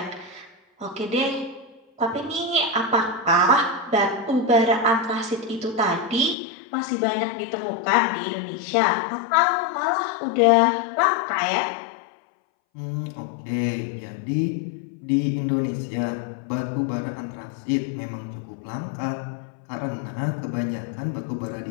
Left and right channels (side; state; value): right; drops out; at 6.4 s